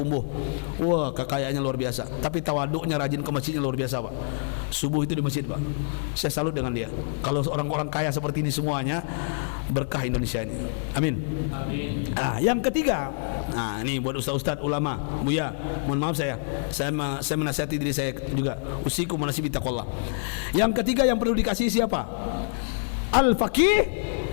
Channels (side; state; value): right; silent; digital silence